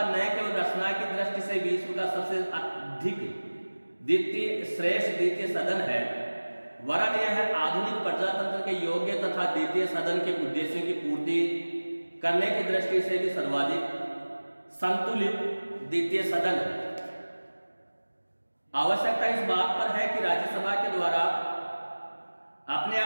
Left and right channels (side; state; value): both; inverted; correlation -1.00